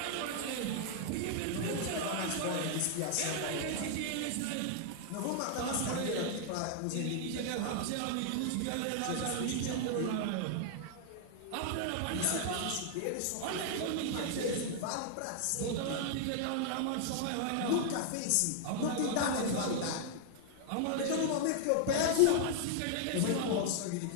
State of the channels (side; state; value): both; different; correlation -0.01